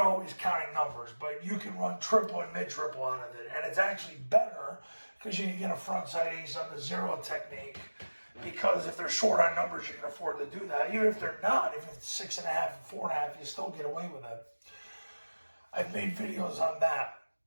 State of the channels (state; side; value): inverted; both; correlation -1.00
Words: counting numbers, but you can run triple and mid-triple out of it. And it's actually better because you can get a front side ace on the zero technique, because if they're short on numbers, you can afford to do that. Even if they're not, if it's 6.5 and 4.5, you still get away with it. I've made videos on that.